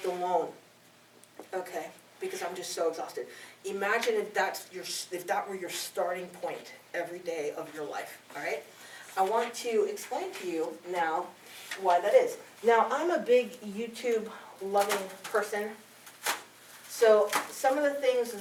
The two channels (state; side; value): identical; both; correlation 1.00